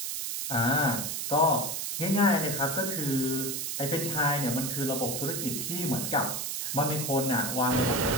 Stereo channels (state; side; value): noise; right; hiss, 3 dB below the sound